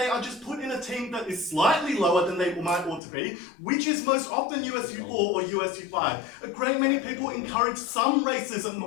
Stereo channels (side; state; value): right; drops out; at 3.0 s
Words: are just put in a team that is slightly lower than they might ought to be, which is most often USU 4 or USU 5. A great many people encourage some racism